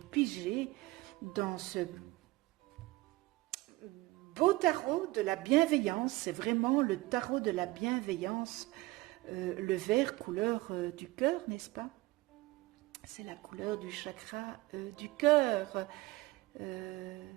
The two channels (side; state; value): left; quieter; 20.0 dB